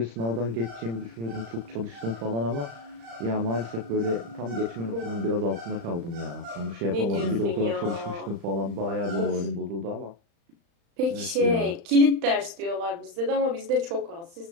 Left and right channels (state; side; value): late; left; 35 ms